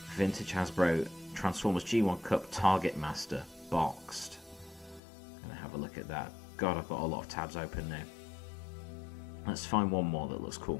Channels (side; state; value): right; drops out; at 5.0 s